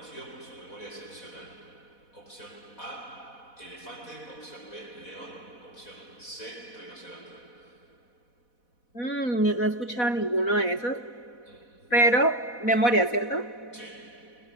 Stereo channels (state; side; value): late; right; 4.1 ms